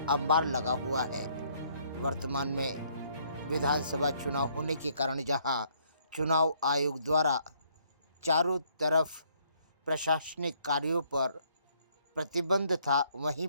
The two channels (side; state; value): both; inverted; correlation -0.67